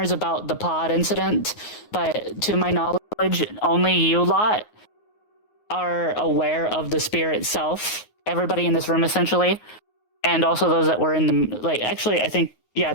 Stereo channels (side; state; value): right; late; 9.5 ms